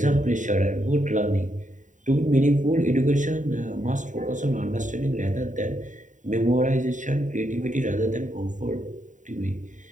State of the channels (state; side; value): late; left; 0.36 ms